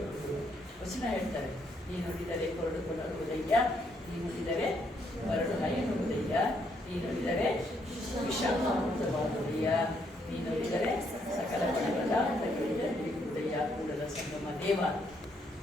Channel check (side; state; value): both; normal; correlation 0.73